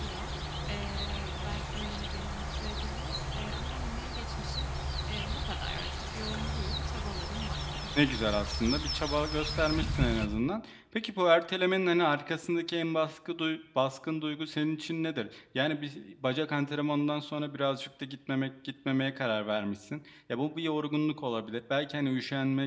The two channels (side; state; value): both; identical; correlation 1.00